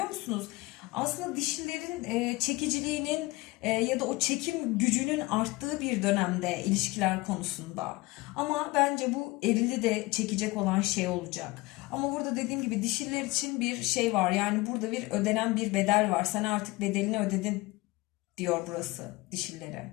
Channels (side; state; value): right; quieter; 21.9 dB